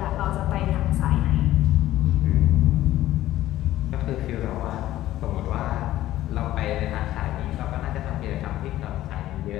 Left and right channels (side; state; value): right; quieter; 14.4 dB